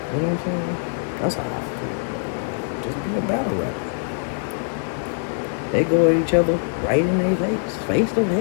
You know what I'm saying? That's how I feel, bro. Like, just be a battle rapper. They go at each other right in their face to face.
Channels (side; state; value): right; silent; digital silence